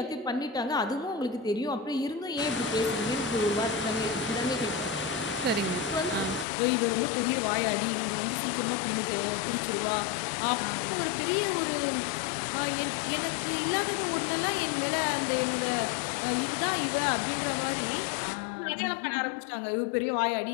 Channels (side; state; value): right; drops out; at 6.5 s